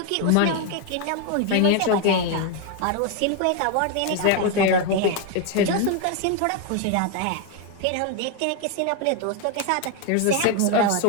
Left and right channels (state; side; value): different; both; correlation 0.01